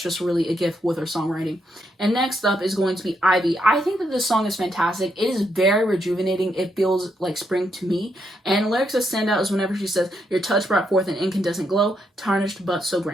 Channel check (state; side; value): normal; both; correlation 0.78